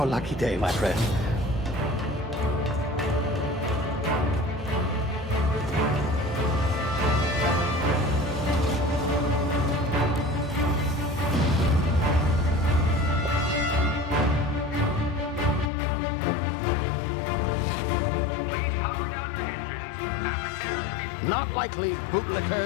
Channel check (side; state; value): right; drops out; at 15.7 s